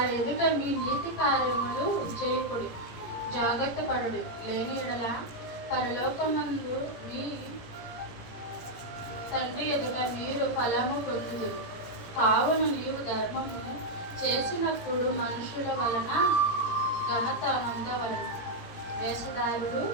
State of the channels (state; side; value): late; right; 17 ms